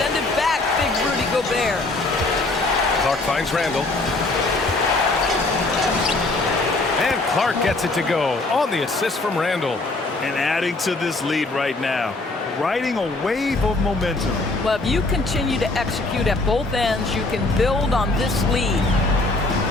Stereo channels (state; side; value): quieter; right; 3.1 dB